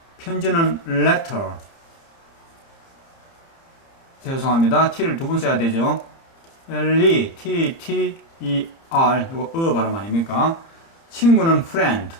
편지는 letter. 죄송합니다. t를 두 번 써야 되죠. T-E-R, 이거 발음 아닙니까? 친구는 friend,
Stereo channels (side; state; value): right; late; 30 ms